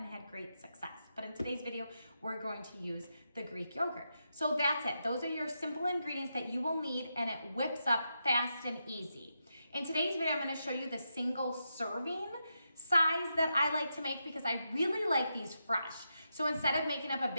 had great success. But in today's video, we're going to use the Greek yogurt. So that's it. Those are your simple ingredients that you will need, and it whips up fast and easy. In today's video, I'm going to show you the single serving size that I like to make because I really like these fresh. So instead of making up a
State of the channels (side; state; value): both; inverted; correlation -0.85